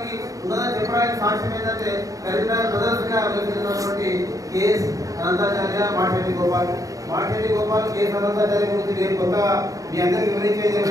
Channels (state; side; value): late; left; 0.16 ms